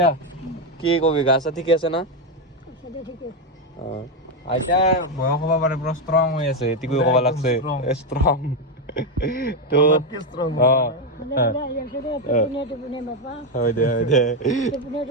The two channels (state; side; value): normal; both; correlation 0.07